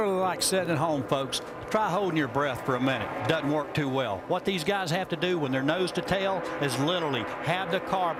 like sitting at home, folks. Try holding your breath for a minute. Doesn't work too well. What these guys have to do when they're nose to tail is literally have the car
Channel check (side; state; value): both; identical; correlation 1.00